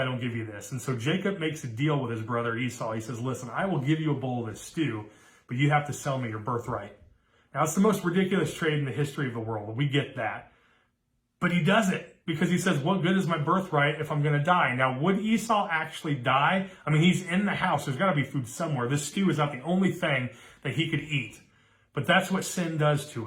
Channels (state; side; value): identical; both; correlation 1.00